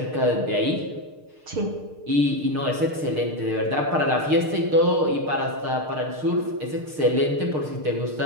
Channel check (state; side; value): late; left; 6.6 ms